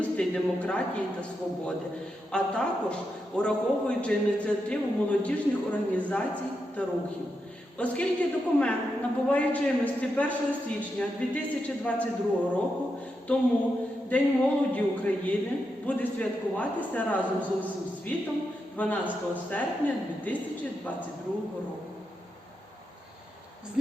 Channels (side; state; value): both; normal; correlation 0.85